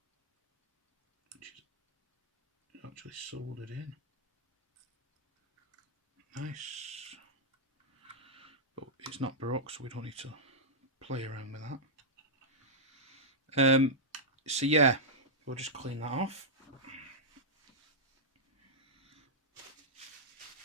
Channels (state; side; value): normal; both; correlation -0.09